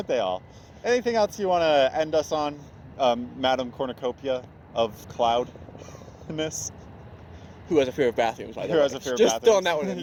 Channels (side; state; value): both; identical; correlation 1.00